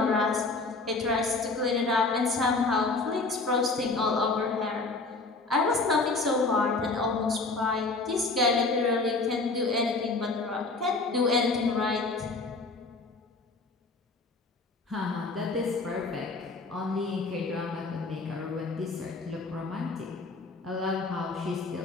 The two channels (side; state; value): right; quieter; 3.7 dB